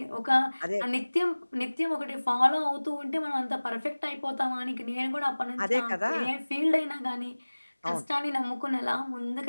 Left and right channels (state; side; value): inverted; both; correlation -1.00